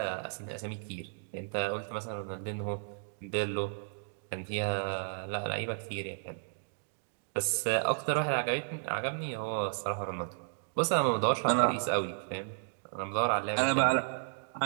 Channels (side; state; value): left; silent; digital silence